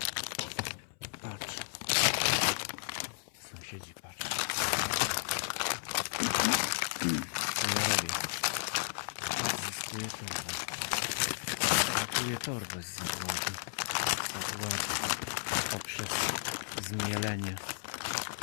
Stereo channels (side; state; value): right; silent; 55 dB below the other